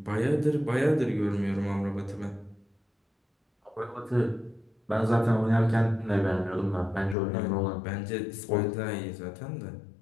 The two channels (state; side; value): drops out; right; at 7.2 s